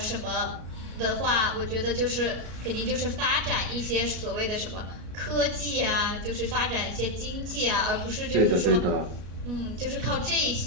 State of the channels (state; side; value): late; left; 33 ms